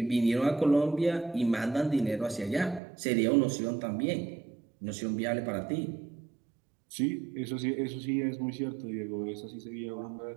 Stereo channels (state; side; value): drops out; left; at 2.8 s